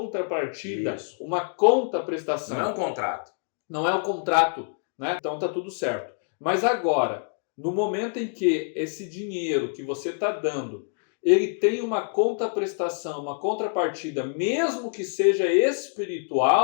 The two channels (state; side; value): silent; right; 61 dB below the other